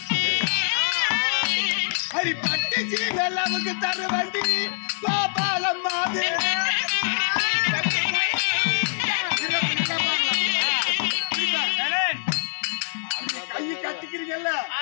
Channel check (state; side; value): silent; right; digital silence